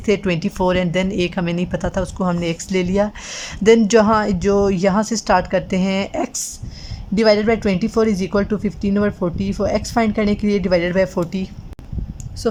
थे 24 एंड देन एक हमें नहीं पता था उसको हमने एक्स ले लिया। देन जो यहाँ से स्टार्ट करते हैं, x divided by 24 is equal to 15/40। For x find करने के लिए divided by 40, so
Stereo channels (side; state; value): both; identical; correlation 1.00